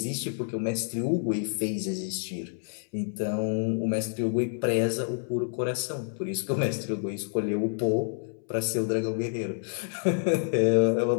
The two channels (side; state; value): right; silent; 59 dB below the other